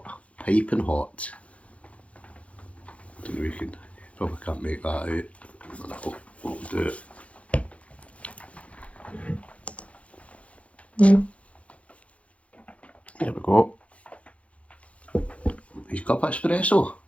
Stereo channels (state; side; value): late; right; 0.064 ms